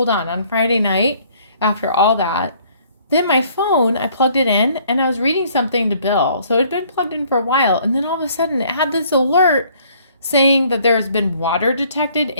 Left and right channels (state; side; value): inverted; both; correlation -0.60